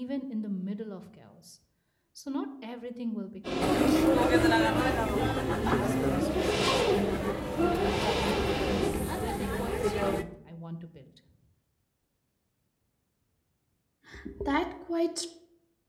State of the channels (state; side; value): identical; both; correlation 1.00